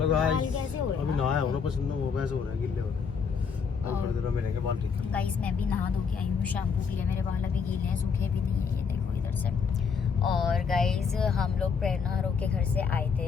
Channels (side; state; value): right; quieter; 6.0 dB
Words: गाइस, कैसे हो रहे अभी नहाया हूँ ना, पसंद वो वैसे हो रहा है, गिल्ले हो रहे हैं. अब थोड़ी देर में मिलेंगे बाल ठीक. गाइस मैं भी नहा धो के आई हूँ शैम्पू के लिए. मेरे बाल अभी गीले हैं, सूखे भी नहीं है. ये देखो इधर से. और गाइज हम लोग प्रेरणा हरो के घर से आए